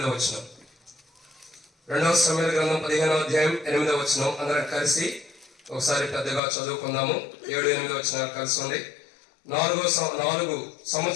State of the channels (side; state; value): right; drops out; at 6.4 s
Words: వచనం. 2వ సమూయేలు గ్రంథం 15వ అధ్యాయం 8వ వచనం అందరం కలిసి ఒకసారి పెద్దగా చదువుకుందాము. 7, 8 వచనాలు కలిసి ఉంది. 4